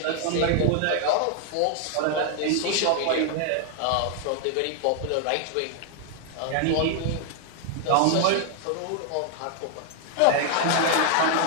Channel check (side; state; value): both; different; correlation 0.00